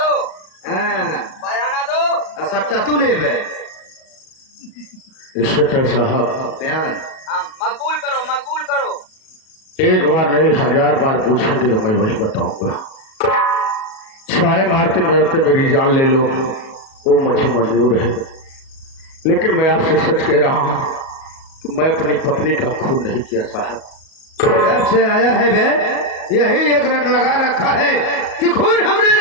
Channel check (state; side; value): late; right; 37 ms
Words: बयाना दो। सच्चा तू नहीं है इंस्पेक्टर साहब। बयान मकबूल करो, मकबूल करो। एक बार नहीं 1000 बार पूछेंगे तो मैं वही बताऊंगा। छाए मारते मारते मेरी जान ले लो, वो मुझे मंजूर है, लेकिन मैं आपसे सच कह रहा हूँ कि मैं अपनी पत्नी का खून नहीं किया साहब। जब से आया है वे यही एक रट लगा रखा है कि खून हमने